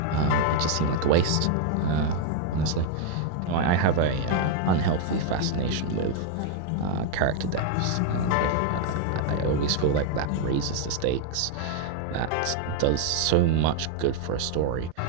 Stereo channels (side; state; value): both; different; correlation 0.00